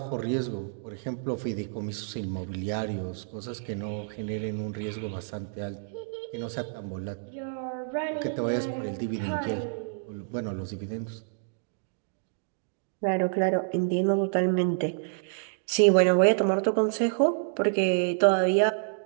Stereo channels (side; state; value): left; silent; digital silence